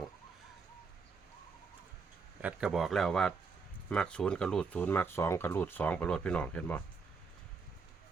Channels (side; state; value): left; quieter; 4.9 dB